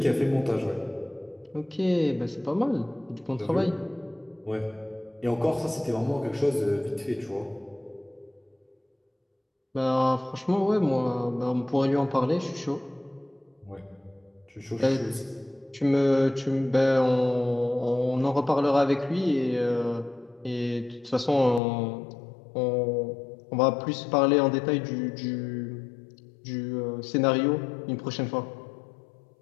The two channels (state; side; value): drops out; right; at 21.6 s